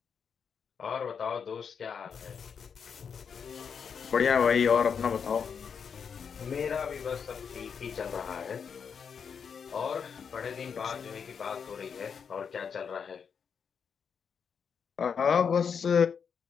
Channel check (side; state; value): right; quieter; 6.6 dB